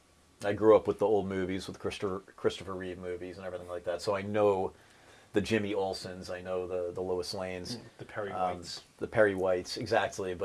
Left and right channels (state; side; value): identical; both; correlation 1.00